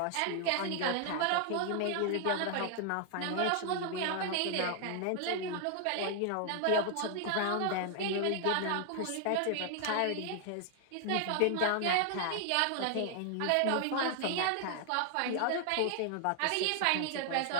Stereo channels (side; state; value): both; different; correlation 0.00